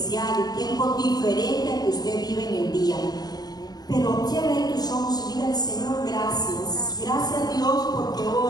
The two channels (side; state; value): right; late; 0.19 ms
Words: un tiempo diferente al que usted vive en el día. Pero cierre tus ojos y dígale: Señor, gracias. Gracias, Dios, porque